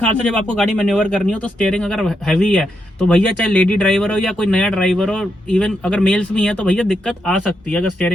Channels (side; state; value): both; normal; correlation 0.82